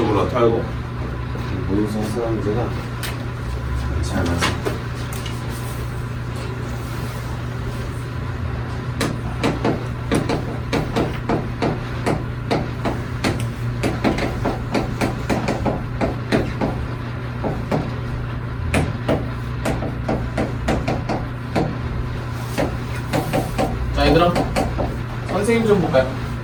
털고 모의고사 해설하는 문제가 잘 맞아. 자 얘들아 선생님 좀 볼까요?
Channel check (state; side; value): identical; both; correlation 1.00